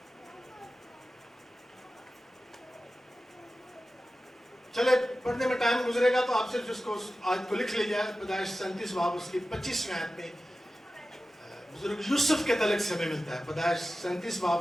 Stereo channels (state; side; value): normal; both; correlation 0.94